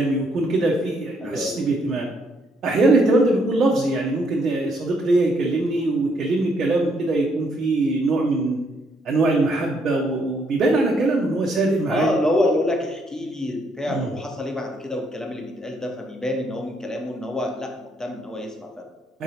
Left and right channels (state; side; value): normal; both; correlation 0.72